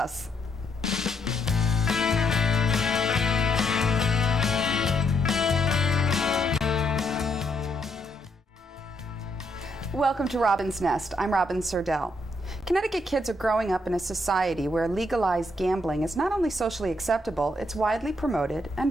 Welcome to Robin's Nest. I'm Robin Serdell. Connecticut kids are growing up in a society where legalized gambling is not only socially acceptable, it's widely promoted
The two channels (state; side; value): normal; both; correlation 0.76